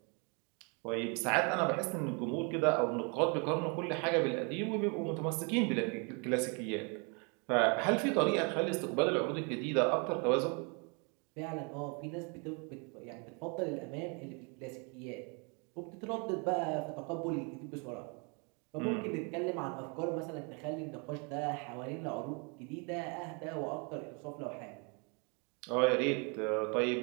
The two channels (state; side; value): quieter; left; 34.2 dB